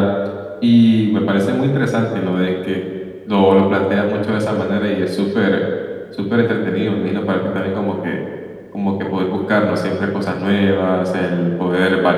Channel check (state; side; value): identical; both; correlation 1.00